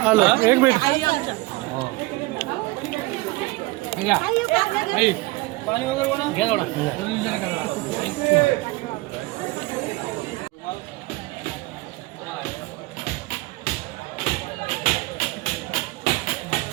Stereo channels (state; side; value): quieter; left; 21.7 dB